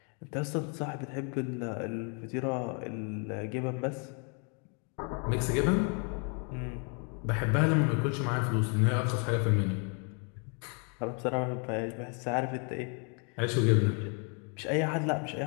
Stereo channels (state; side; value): quieter; right; 38.2 dB